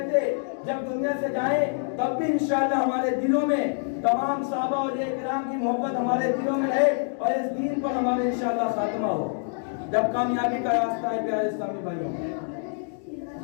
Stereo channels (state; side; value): silent; right; digital silence